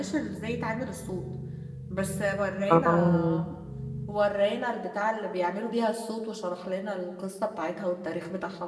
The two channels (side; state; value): both; identical; correlation 1.00